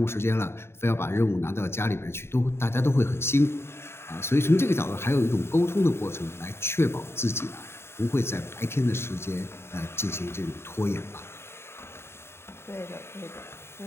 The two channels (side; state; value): right; late; 0.12 ms